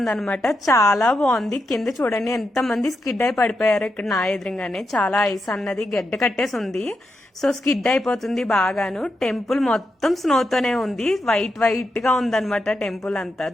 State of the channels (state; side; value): normal; both; correlation 0.85